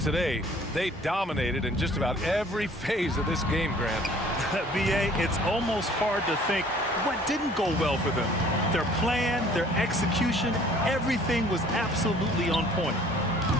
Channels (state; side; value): normal; both; correlation 0.54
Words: They dominated in just about every phase of this game, Grant. B.A., it's almost hard to think what didn't go well for them. Their plan, their execution, everything was absolutely on point.